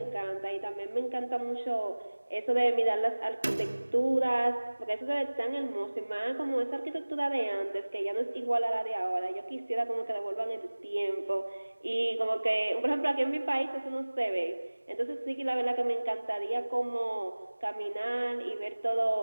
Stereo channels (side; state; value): both; inverted; correlation -1.00